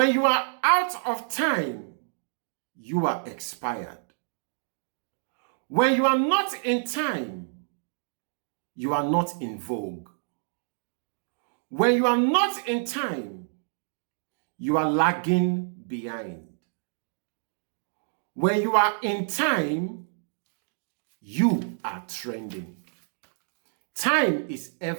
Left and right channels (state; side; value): silent; left; digital silence